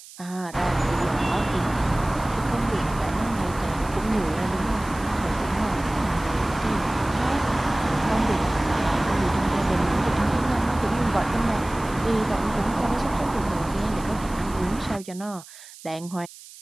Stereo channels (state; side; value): noise; right; hiss, 18 dB below the sound